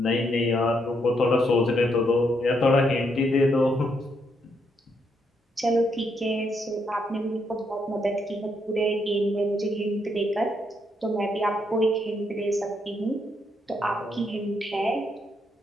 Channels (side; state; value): both; normal; correlation 0.76